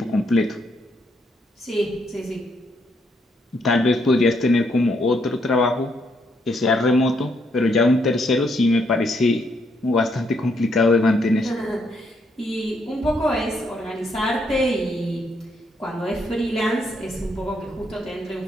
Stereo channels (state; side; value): normal; both; correlation 0.74